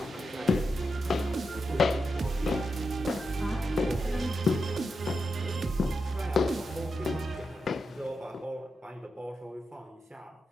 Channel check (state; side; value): normal; both; correlation 0.87